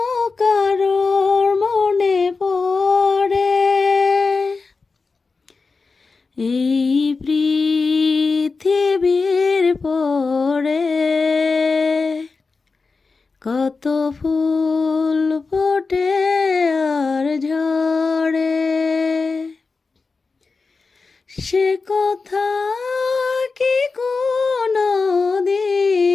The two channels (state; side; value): quieter; right; 4.3 dB